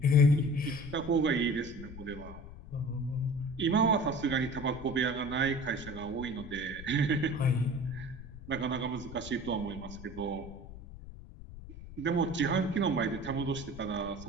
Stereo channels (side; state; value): left; noise; rumble, 14 dB below the sound